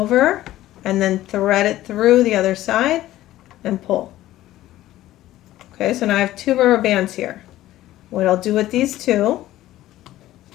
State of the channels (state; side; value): quieter; right; 14.9 dB